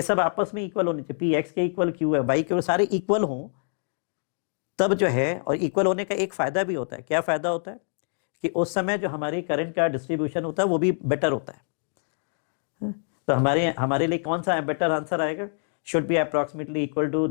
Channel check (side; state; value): right; silent; digital silence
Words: सब आपस में equal होने चाहिए, p x के equal q है, y के सारे इक्वल हों तब जो है, और इक्वल होने का एक फायदा भी होता है, क्या फायदा होता है कि उस समय जो हमारी करंट का डिस्ट्रीब्यूशन होता है वो भी बेटर होता है, तो हमारे लिए कौन सा बेटर आंसर आएगा, should be approximately equal to